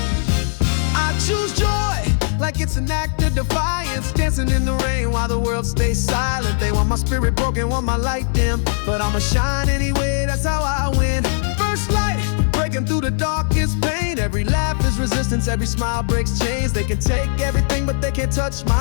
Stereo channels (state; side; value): silent; right; 66 dB below the other